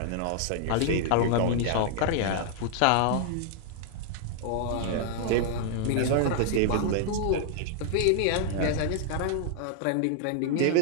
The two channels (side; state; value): both; different; correlation 0.00